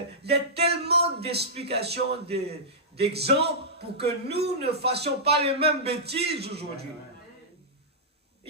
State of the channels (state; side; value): normal; both; correlation -0.14